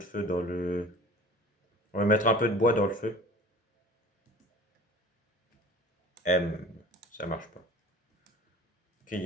dans le... On va mettre un peu de bois dans le feu. M, ça marche pas. Ok, il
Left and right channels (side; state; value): both; normal; correlation 0.43